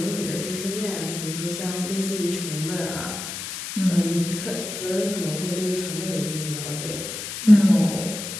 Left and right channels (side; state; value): left; noise; hiss, 7 dB below the sound